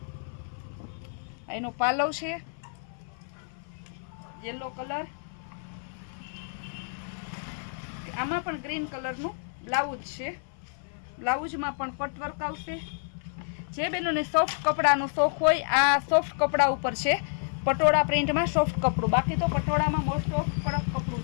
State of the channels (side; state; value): right; silent; 56 dB below the other